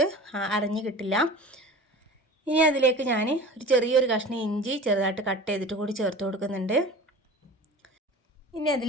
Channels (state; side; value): normal; both; correlation 0.37